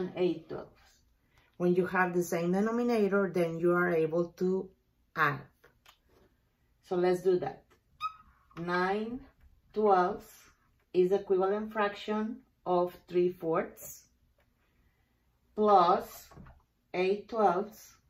8/12. When you have the same denominator, then you are able to add. So let's do that. 9/12 is the equivalent fraction of 3/4 plus 8/12.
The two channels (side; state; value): both; identical; correlation 1.00